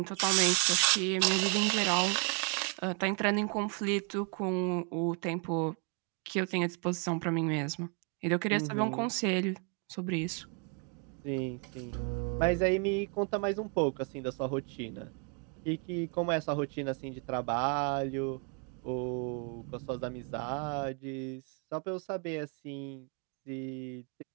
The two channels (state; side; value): quieter; left; 37.3 dB